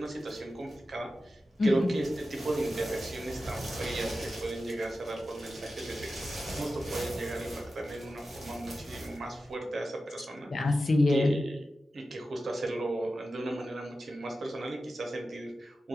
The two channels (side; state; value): both; normal; correlation 0.92